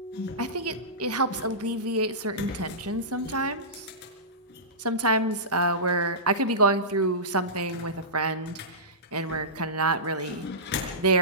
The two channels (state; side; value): normal; both; correlation -0.19